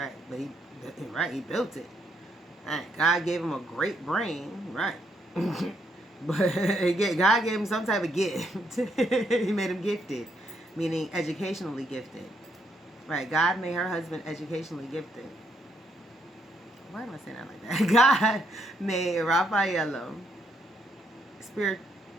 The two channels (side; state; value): both; normal; correlation 0.74